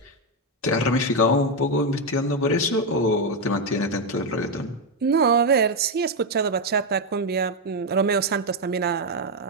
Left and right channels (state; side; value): normal; both; correlation 0.05